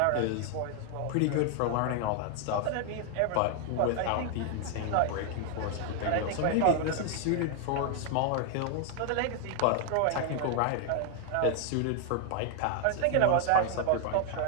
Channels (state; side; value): different; both; correlation 0.00